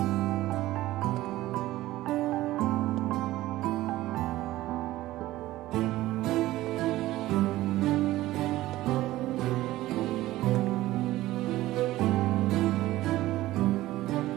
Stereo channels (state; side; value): quieter; left; 16.3 dB